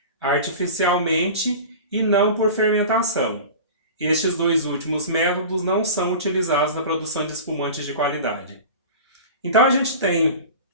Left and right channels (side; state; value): both; inverted; correlation -0.35